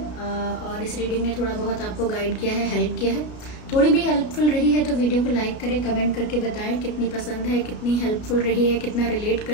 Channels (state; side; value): late; right; 33 ms